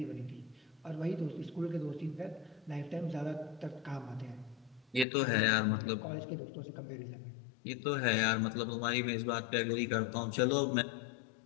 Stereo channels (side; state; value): right; drops out; at 5.1 s